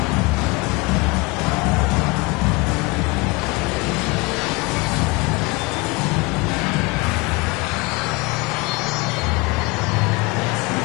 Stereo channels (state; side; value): quieter; right; 25.7 dB